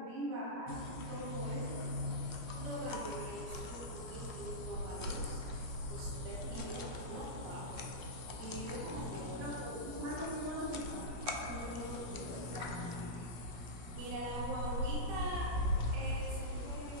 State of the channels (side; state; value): left; late; 16 ms